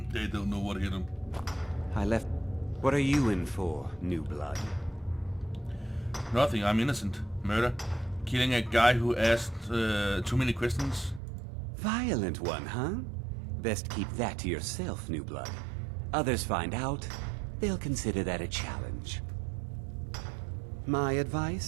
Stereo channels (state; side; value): drops out; left; at 11.2 s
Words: They don't know what hit them. I left. What are you in for, new blood? Nothing, I'm innocent. Murder. Killing a guy who asked too many questions. Violent one, huh? Best keep that to yourself, new blood. Others find out, they'll consider that a challenge. My